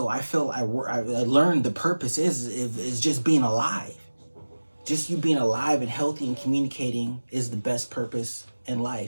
I feel I learned the purpose is just being alive. Just you being alive and healthy and communicating is the best purpose in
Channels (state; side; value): inverted; both; correlation -1.00